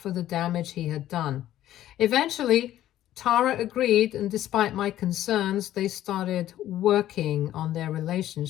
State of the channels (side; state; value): right; quieter; 13.0 dB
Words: the damage he had done. Eventually, Tara agreed, and despite my concerns, they started working on their